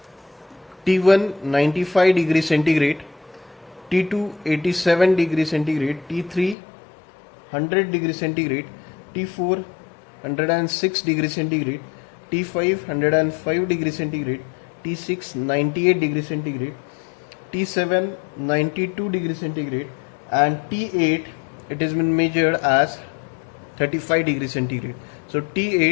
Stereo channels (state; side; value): drops out; right; at 6.6 s